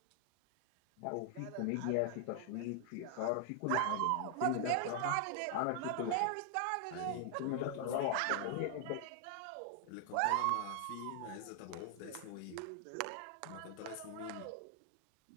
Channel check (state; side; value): different; both; correlation 0.00